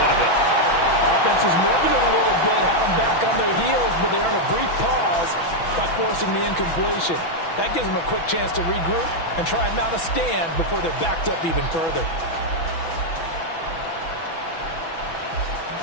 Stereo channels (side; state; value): right; late; 6.1 ms